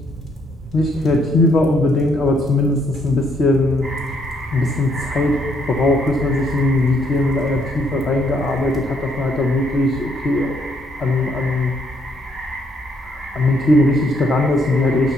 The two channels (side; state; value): both; normal; correlation 0.70